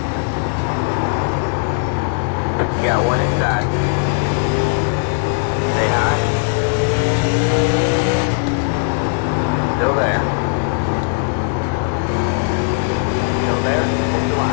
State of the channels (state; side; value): silent; right; digital silence